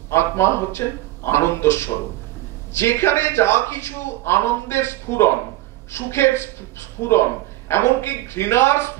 আত্মা হচ্ছেন আনন্দ স্বরূপ। যেখানে যা কিছু আনন্দের স্ফুরণ, সুখের স্ফুরণ, এমনকি ঘৃণার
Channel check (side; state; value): left; quieter; 16.5 dB